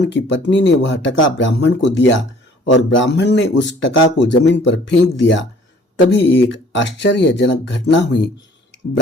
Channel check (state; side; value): normal; both; correlation 0.54